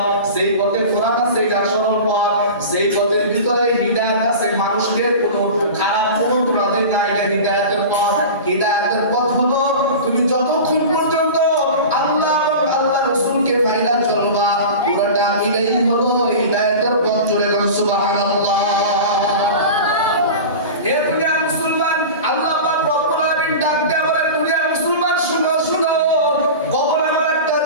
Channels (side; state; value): both; inverted; correlation -0.32